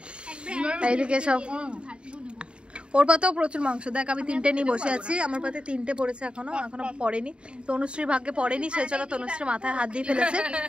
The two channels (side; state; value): left; late; 0.054 ms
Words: এইদিকে সব, ওর পাতেও প্রচুর মাংস। দেখ আমি 3টে নিয়ে বসে আছি, আমার পাতে 3টে পড়েছে, এখনো পড়েনি। তনুশ্রীর ভাগ্যে পড়েনি, সেই জন্য তনুশ্রীর মাথায় হাত দিয়ে ফেলেছে।